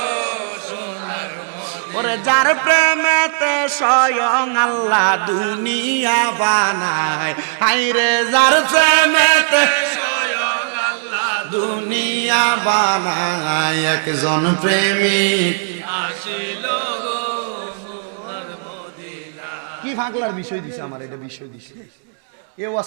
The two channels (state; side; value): silent; left; digital silence